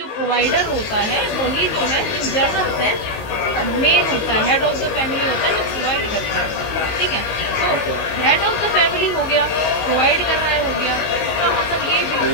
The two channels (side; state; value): right; late; 19 ms